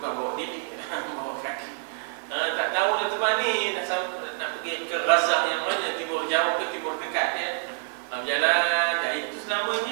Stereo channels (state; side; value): silent; left; 59 dB below the other